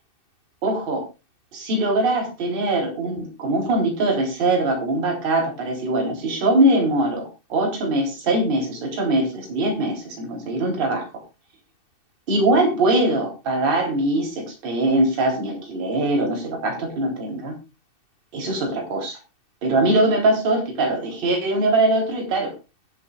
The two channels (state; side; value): late; left; 2.6 ms